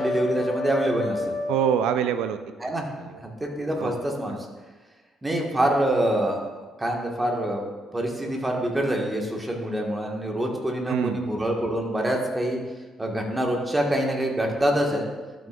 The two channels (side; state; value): both; normal; correlation 0.77